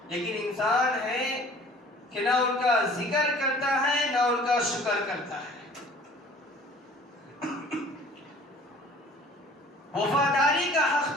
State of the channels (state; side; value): normal; both; correlation 0.50